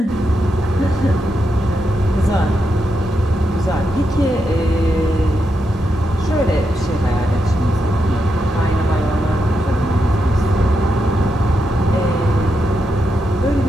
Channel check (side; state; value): both; normal; correlation 0.84